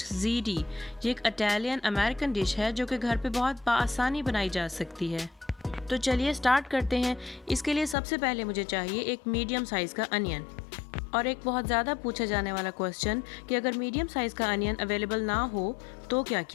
ज़ीडी। ये एक इटालियन अमेरिकन डिश है जो कि घर पे बहुत आसानी बनाई जा सकती है। तो चलिए स्टार्ट करते हैं। इसके लिए सबसे पहले मुझे चाहिए एक मीडियम साइज़ का अनियन। और एक बहुत ज़्यादा पूछा जाने वाला क्वेश्चन कि अगर मीडियम साइज़ का अनियन अवेलेबल ना हो तो क्या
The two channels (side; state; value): right; drops out; at 8.0 s